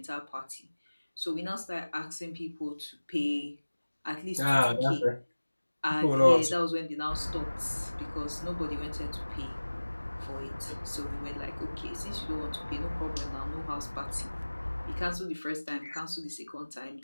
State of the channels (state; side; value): inverted; both; correlation -1.00